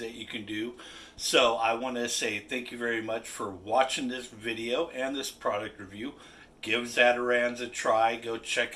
you can do. So I want to say thank you very much for watching this video and this product review. Give Zatarain's a try. Go check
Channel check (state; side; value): identical; both; correlation 1.00